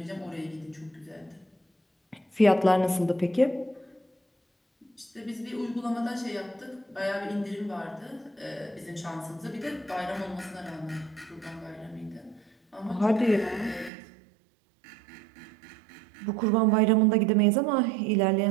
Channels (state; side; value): drops out; left; at 13.9 s